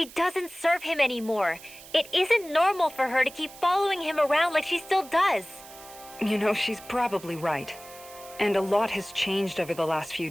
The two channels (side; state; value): right; noise; hiss, 18 dB below the sound